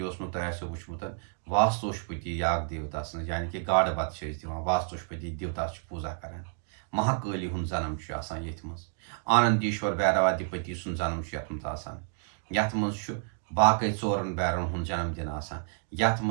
में तुम वुचमुत वास्तुशपति याग देवता सन यानी कि गाड़ बत वास्तुशपति देवता पूजा कर महाकाली हूं जन्म ये आनंदीश्वर भैरवाधिपति सुन जन्म यथ मज बाकी चोरन बैरन हूं जन्मदिन यथ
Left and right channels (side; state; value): left; silent; digital silence